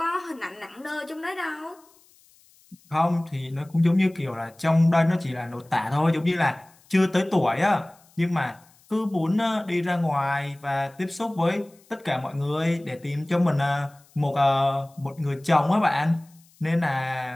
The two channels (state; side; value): noise; left; hiss, 30 dB below the sound